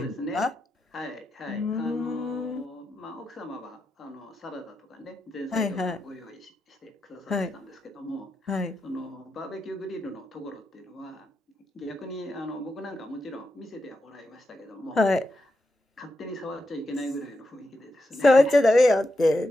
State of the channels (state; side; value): normal; both; correlation 0.86